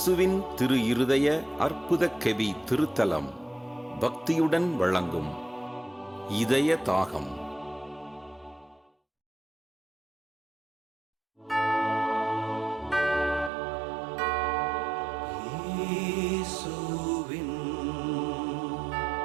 திரு இருதய அற்புத கெவி திருத்தலம் பக்தியுடன் வழங்கும் இதய தாகம்.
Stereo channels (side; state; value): left; drops out; at 13.5 s